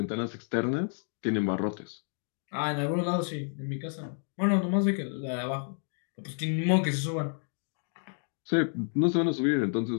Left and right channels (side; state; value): right; silent; 58 dB below the other